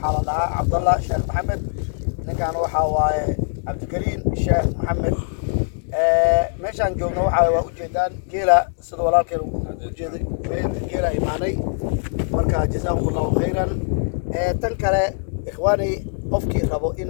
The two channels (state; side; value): silent; right; digital silence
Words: la dhahaa Cabdullah Sheekh Maxamed, ninkan waxaa waaye Cabdikariim Sheekh Maxamed. meeshaan joogno waa ujeedaan geela sida walaalkeen u jeeday geela imaanay, marka jazakumullahu khayran. tan kale ikhwaani, qofkii rabo in